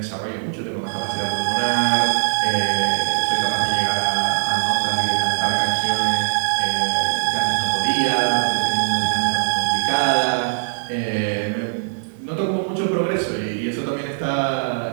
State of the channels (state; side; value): silent; left; 65 dB below the other